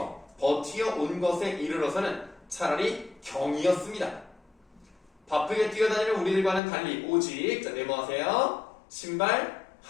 버티어 온 것에 이르러서는 차라리 경이었습니다. 바쁘게 뛰어다니는 우리들과는 달리 오직 네모하세요. 신발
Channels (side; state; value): right; drops out; at 6.6 s